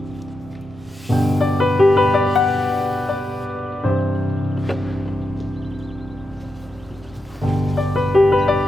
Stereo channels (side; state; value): both; normal; correlation 0.87